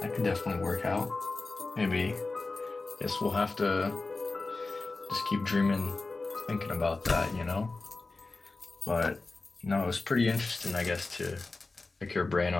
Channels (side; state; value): right; quieter; 3.5 dB